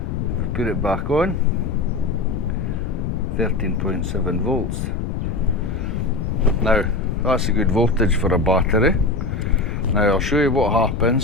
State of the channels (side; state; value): left; noise; rumble, 3 dB below the sound